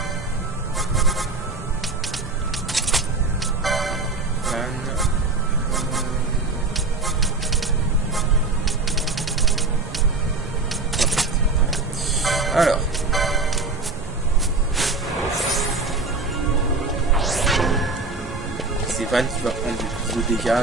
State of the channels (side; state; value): left; quieter; 3.5 dB